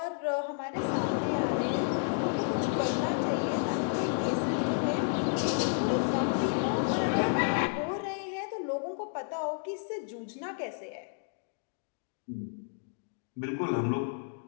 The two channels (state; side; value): silent; right; digital silence